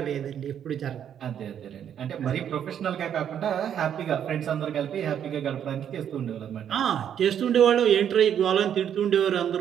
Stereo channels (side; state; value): left; quieter; 9.2 dB